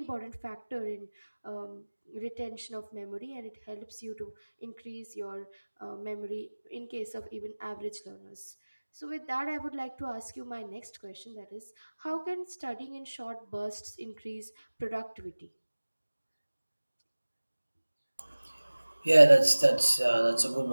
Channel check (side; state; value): both; inverted; correlation -1.00